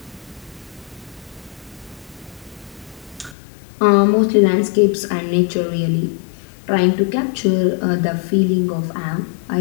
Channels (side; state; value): right; drops out; at 3.4 s